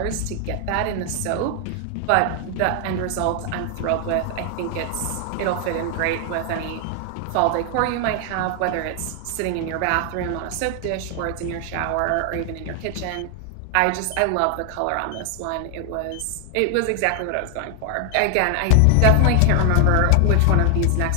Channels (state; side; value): different; both; correlation 0.00